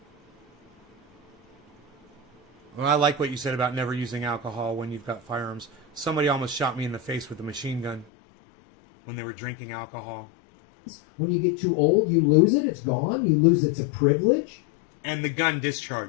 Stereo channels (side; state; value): right; drops out; at 8.1 s